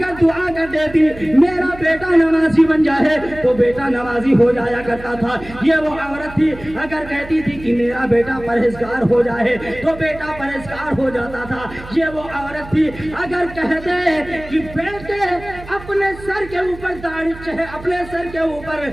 دعا کر دیتی میرا بیٹا نمازی بن جائے تو بیٹا نمازی ہو جایا کرتا تھا. یہ وہ عورت تھی اگر کہتی تھی کہ میرا بیٹا پرہیزگار ہو جائے تو بیٹا پرہیزگار ہو جاتا تھا. یہ وہ عورت تھی اگر کہتے کہ بیٹے اپنے سر کے اوپر داڑھی اپنے سر کے اوپر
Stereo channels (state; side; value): noise; right; hum, 16 dB below the sound